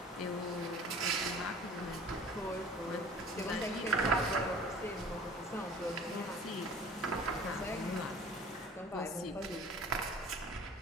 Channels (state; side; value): normal; both; correlation 0.46